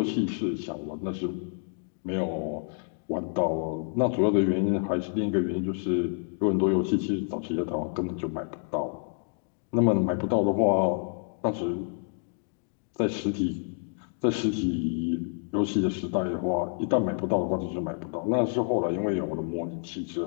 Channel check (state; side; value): silent; right; 59 dB below the other